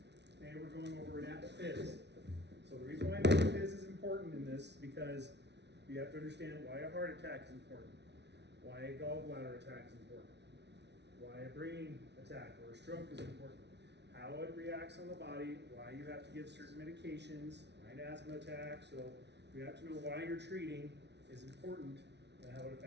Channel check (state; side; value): late; left; 0.50 ms